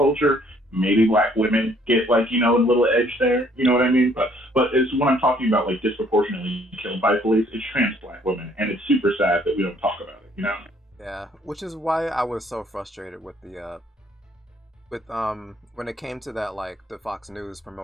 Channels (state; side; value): normal; both; correlation 0.63